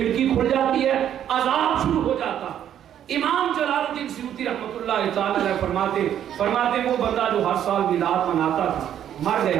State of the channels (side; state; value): left; quieter; 10.2 dB